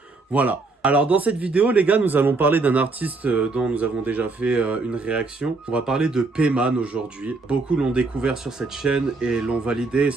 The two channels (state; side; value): quieter; left; 3.6 dB